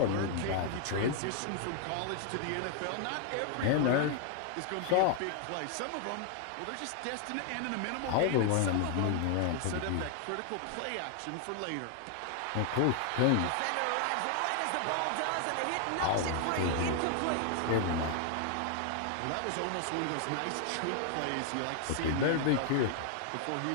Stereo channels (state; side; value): different; both; correlation 0.00